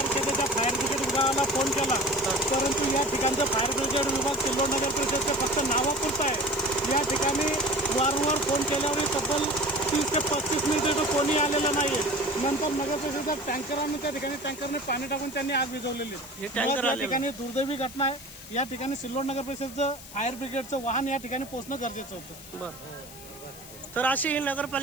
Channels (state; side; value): noise; left; hiss, 16 dB below the sound